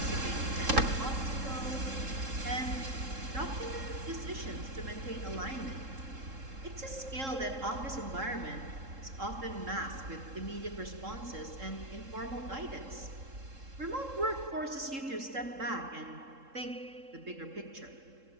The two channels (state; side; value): late; left; 3.7 ms